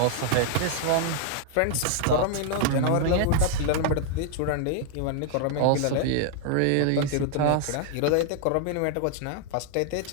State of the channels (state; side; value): different; both; correlation 0.00